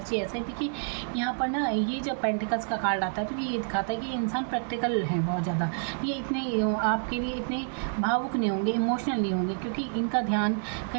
ऐसा है। देखिए, यहाँ पर ना ये जब पेंटिकल्स का कार्ड आता है तो ये दिखाता है कि ये इंसान प्रैक्टिकल है बहुत ज़्यादा, ये इतने आपके लिए इतने भावुक नहीं होंगे, इमोशनल नहीं होंगे, क्योंकि इनका ध्यान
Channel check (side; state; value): left; silent; 59 dB below the other